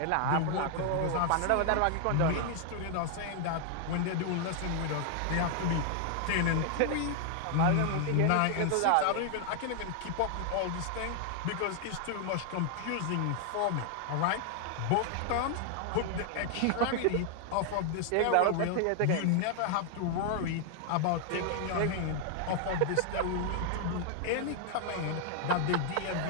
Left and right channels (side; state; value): both; different; correlation 0.00